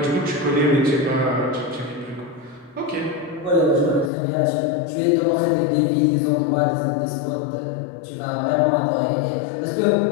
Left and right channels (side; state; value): right; drops out; at 4.1 s